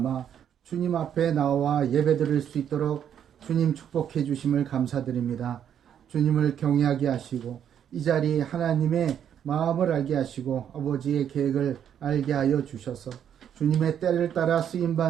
주님 앞에 나와 예배드릴 수 있도록 주님 축복해 주심을 감사드립니다. 주님을 경외하게 하시고 이 자리 하나님의 마음을 알게 하시고 아버지의 계획을 알게 하여 주셔서 주님의 때를 따라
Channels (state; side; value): quieter; left; 9.1 dB